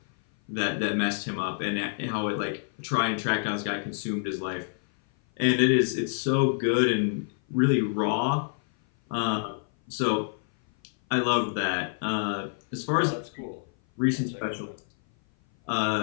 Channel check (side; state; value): right; silent; 56 dB below the other